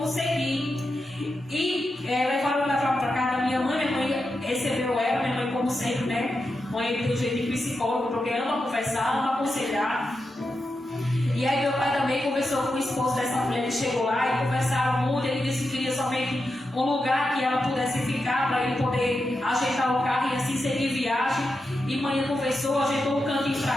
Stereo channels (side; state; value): both; normal; correlation 0.88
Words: seguir. E levaram para casa da minha mãe recebeu ela, minha mãe como sempre, né? Mãe tem um jeito de psicólogo, porque ama conversar, ama aconselhar. E aí meu pai também conversou com o esposo dessa mulher, ele chegou lá e conversaram muito, ele disse que queria somente um lugar que ela pudesse ficar para ele poder ajeitar o carro e assim seguir viagem. E mãe conversou, ajeitou um cantinho